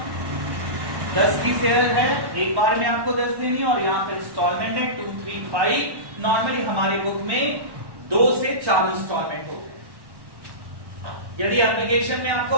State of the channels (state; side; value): late; left; 1.1 ms